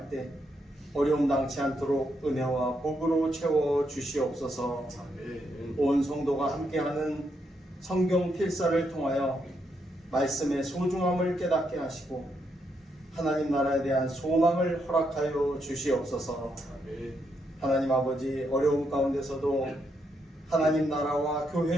때 어려움 당치 않도록 은혜와 복으로 채워 주시옵소서. 온 성도가 함께하는 성경 필사를 통하여 말씀의 소중함을 깨닫게 하시고 하나님 나라에 대한 소망을 허락하여 주시옵소서. 하나님 아버지, 어려움 가운데서도 하나님 나라와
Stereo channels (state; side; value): normal; both; correlation 0.79